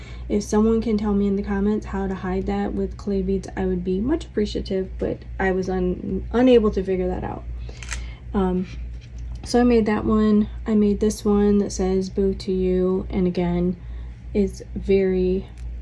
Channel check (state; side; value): identical; both; correlation 1.00